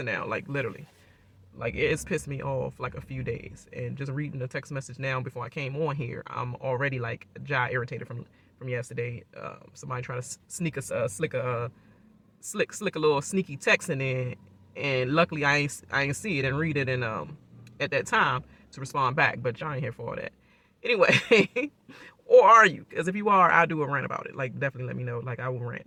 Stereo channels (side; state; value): both; identical; correlation 1.00